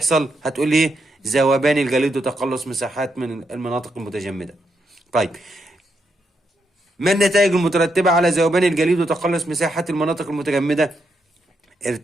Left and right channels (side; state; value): both; normal; correlation 0.80